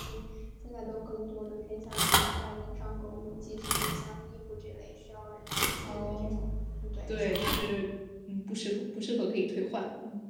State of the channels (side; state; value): both; identical; correlation 1.00